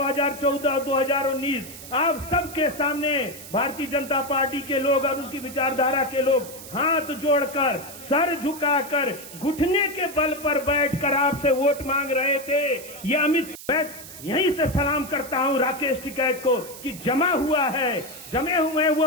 और 2019 आप सबके सामने भारतीय जनता पार्टी के लोग और उसकी विचारधारा के लोग हाथ जोड़कर, सर झुकाकर, घुटने के बल पर बैठकर आपसे वोट मांग रहे थे। ये अमित यहीं से सलाम करता हूं राकेश टिकैत को कि जमे हुए हैं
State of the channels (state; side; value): noise; right; hiss, 14 dB below the sound